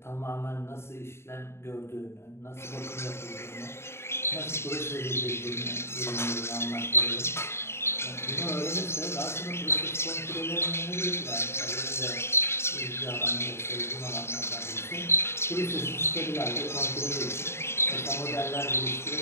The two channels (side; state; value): right; late; 0.12 ms